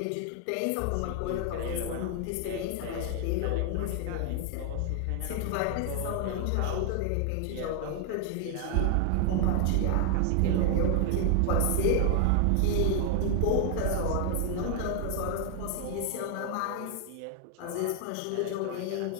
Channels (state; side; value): different; both; correlation 0.00